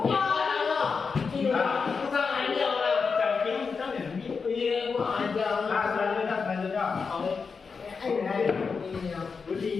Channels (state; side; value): quieter; right; 5.2 dB